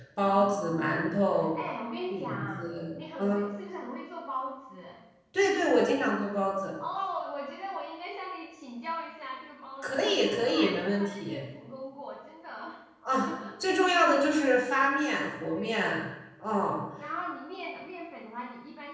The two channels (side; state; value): both; identical; correlation 1.00